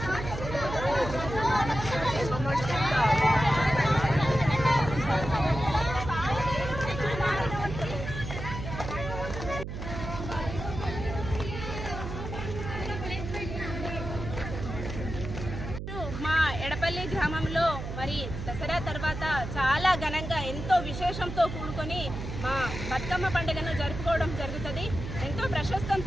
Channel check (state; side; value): noise; right; hum, 7 dB below the sound